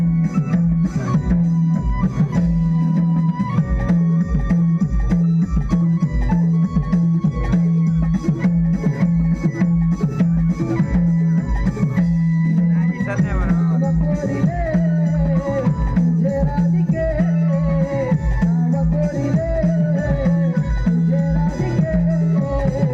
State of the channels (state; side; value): identical; both; correlation 1.00